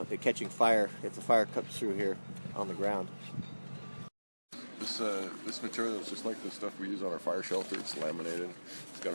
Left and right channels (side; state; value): both; inverted; correlation -1.00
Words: catching fire if the fire comes through here on the ground. This material is just like the stuff we use on our fire shelter. It's laminated. It's got